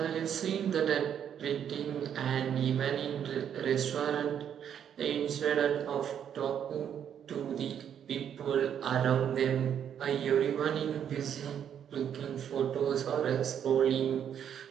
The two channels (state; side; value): quieter; left; 8.9 dB